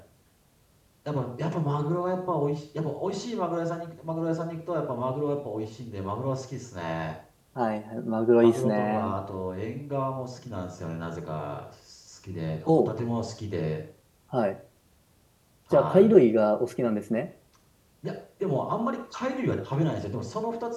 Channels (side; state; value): both; identical; correlation 1.00